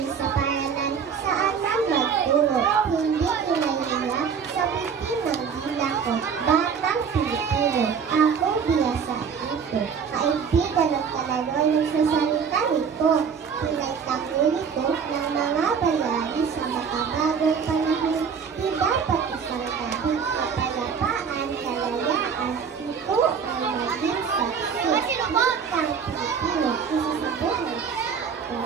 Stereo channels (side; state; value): left; quieter; 6.5 dB